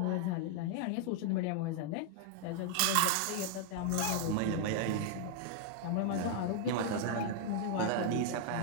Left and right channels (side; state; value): both; different; correlation 0.00